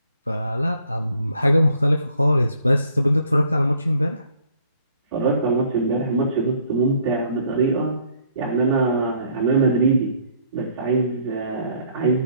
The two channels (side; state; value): both; inverted; correlation -0.63